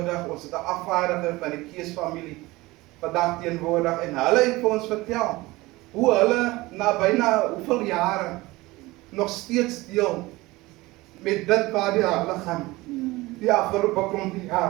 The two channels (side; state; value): left; quieter; 20.5 dB